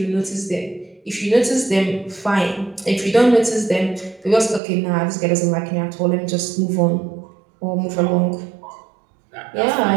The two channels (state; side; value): drops out; left; at 4.6 s